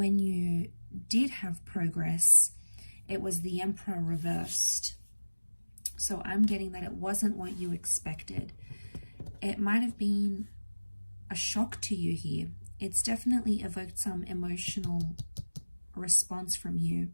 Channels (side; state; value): both; inverted; correlation -1.00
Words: you did have progress, it was the Emperor reversed. So I'm getting that it wasn't what you expected. It might have been a shock to you here. It's definitely evoked some emotional response from you.